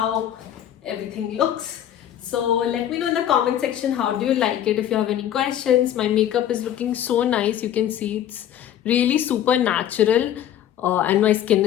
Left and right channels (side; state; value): right; quieter; 10.9 dB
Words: everything looks. So let me know in the comment section how do you like it. If you have any questions, my makeup is looking so nice. You can see it's really super natural. And my skin